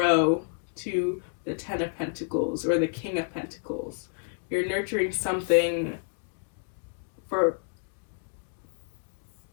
to the Ten of Pentacles or the King of Pentacles. You're nurturing something for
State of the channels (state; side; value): silent; right; digital silence